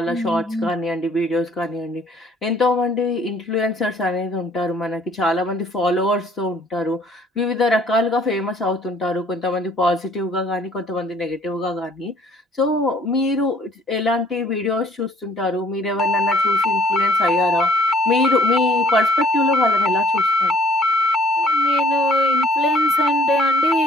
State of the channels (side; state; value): both; normal; correlation 0.60